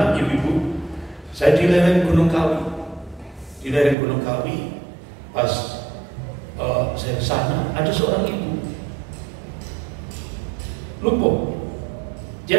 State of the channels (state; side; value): drops out; left; at 4.0 s